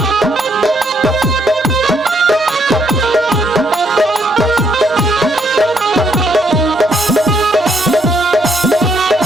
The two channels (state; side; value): normal; both; correlation 0.72